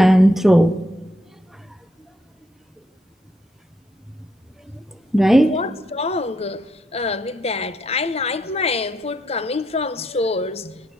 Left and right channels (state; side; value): normal; both; correlation 0.77